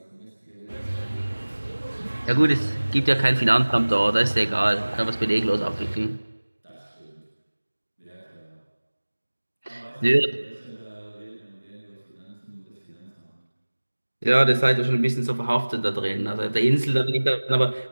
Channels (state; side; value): inverted; both; correlation -1.00